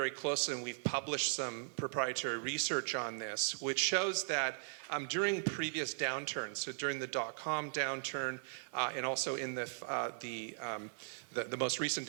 closely, and we've published some proprietary research on this, which shows that during previous downturns, so during the dot-com downturn and also in the most recent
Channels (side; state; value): left; silent; 52 dB below the other